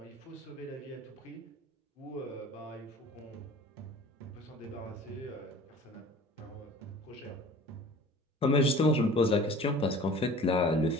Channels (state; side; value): normal; both; correlation 0.44